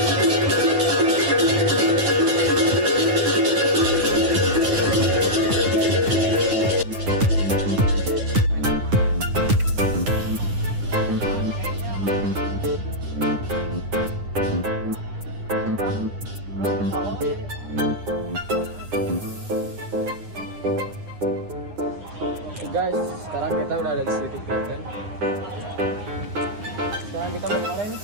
Guys, sekarang kita udah ada di Sedikit Garden. Sekarang kita mau kemana nih?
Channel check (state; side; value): late; left; 9.8 ms